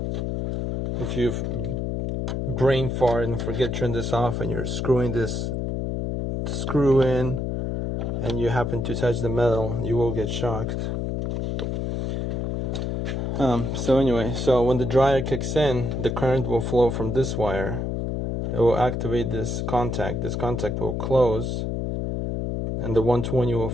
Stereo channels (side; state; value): left; noise; hum, 1 dB below the sound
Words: If you've brain fart and forget to turn this off and you're screwing this screw in and you happen to touch the metal, you will get shocked. So anyway, so when the dryer kicks in, the current will flow from this wire. It will activate this contact. This contact will close, and the 120 will